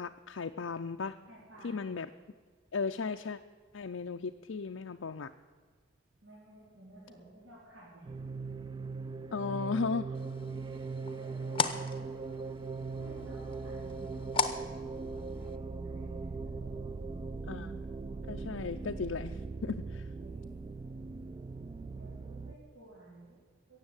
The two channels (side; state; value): both; normal; correlation 0.24